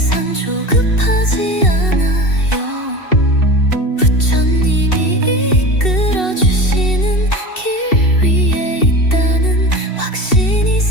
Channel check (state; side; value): late; right; 2.7 ms